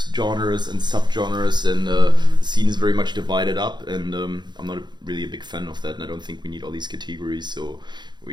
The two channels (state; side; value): late; left; 0.21 ms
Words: genres and subgenres, and the scene is very much divided up. And I'm not really a big fan of that, and I don't think we need all these categories. So